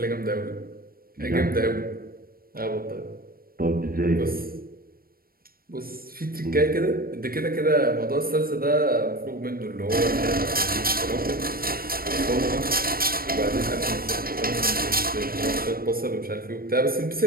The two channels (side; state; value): left; late; 0.43 ms